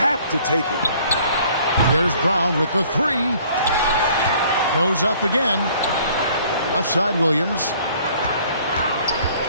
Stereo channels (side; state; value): both; inverted; correlation -0.56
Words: to take it. Here's Brown with the three. Goes up again. Left side, Williams.